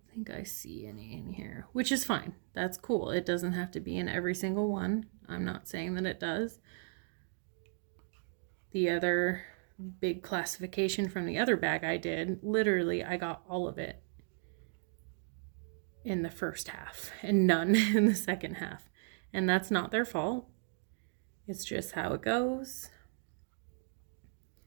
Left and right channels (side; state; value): left; silent; 54 dB below the other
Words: think I see any in here, which is fine. That's cool. It doesn't have to be in every single one. I'm not saying that it does. The other big classification from the other bag I did, literally I got all of it in the first half and none in the second half. And that's not their fault. It's just how it goes.